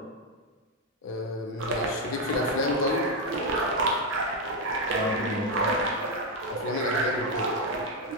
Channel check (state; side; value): normal; both; correlation 0.04